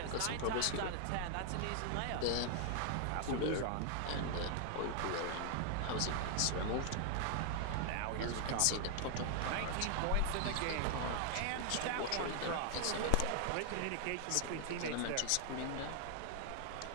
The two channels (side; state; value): both; different; correlation 0.00